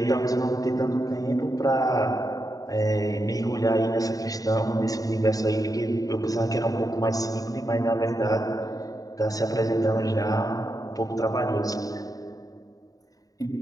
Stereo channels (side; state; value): right; late; 0.18 ms